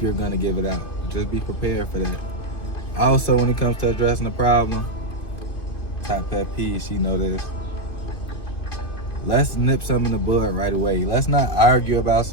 you're going to give it out. Just be prepared for that. Also, when it comes to addressing a problem, top pet peeve, she know this. Let's nip something in the bud right away. Let's not argue about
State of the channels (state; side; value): late; right; 2.5 ms